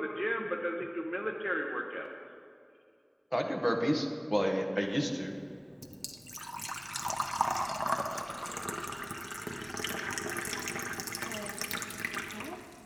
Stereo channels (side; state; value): both; identical; correlation 1.00